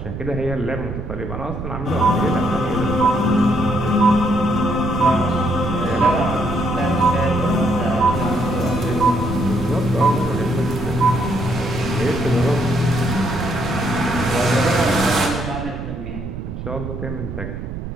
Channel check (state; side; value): noise; right; rumble, 7 dB below the sound